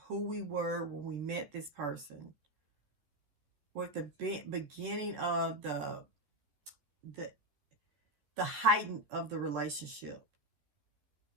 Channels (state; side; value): late; left; 14 ms